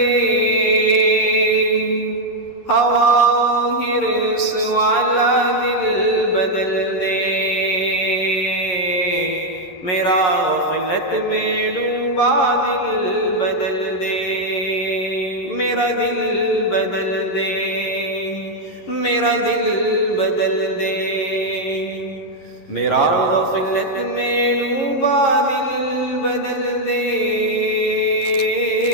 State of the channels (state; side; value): late; right; 11 ms